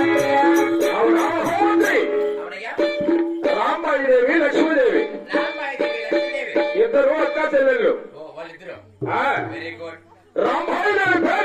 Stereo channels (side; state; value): both; identical; correlation 1.00